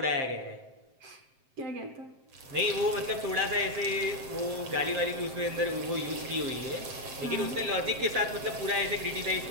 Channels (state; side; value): late; left; 7.6 ms